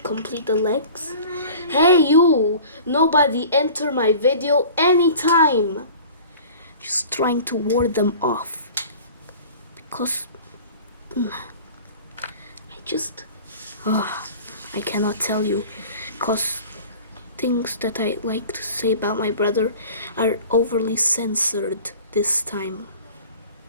Complete the legs. Hey you! Nobody enter my video anytime! Just trying to ward them off. Because I cannot tell you. Because things that I like to say about my brother are overly censored this time.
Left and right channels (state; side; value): inverted; both; correlation -0.42